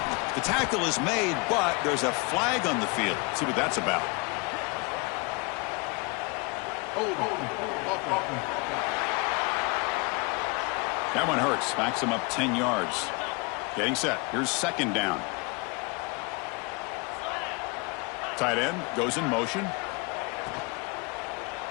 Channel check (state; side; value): quieter; right; 29.3 dB